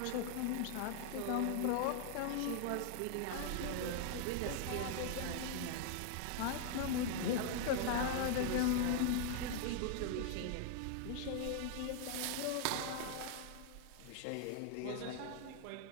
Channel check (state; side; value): different; both; correlation 0.00